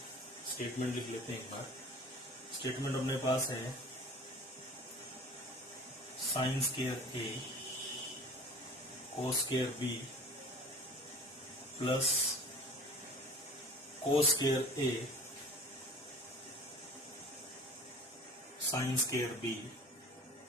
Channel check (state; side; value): normal; both; correlation 0.43